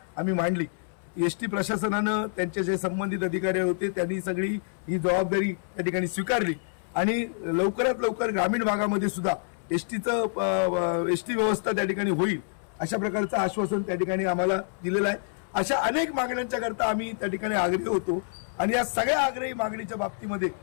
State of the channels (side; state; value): right; silent; 60 dB below the other